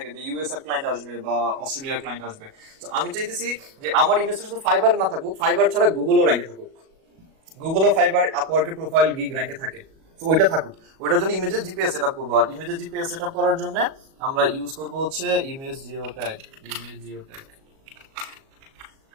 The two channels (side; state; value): left; late; 37 ms